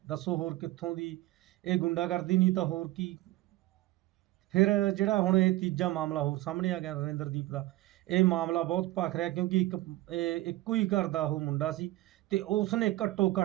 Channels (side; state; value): left; quieter; 17.5 dB